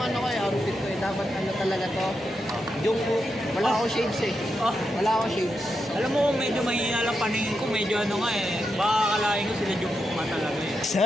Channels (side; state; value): both; normal; correlation 0.85